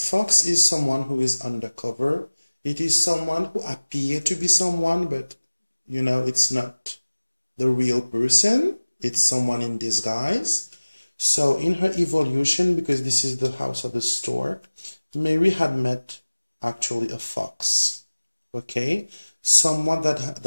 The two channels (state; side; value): inverted; both; correlation -1.00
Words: is someone who is undercover. It is someone who appears to be someone, but you know, it's not the real person. It's someone in disguise. So in her evolution, because this is the house of the stork, Mary had met actually a fox. Okay, someone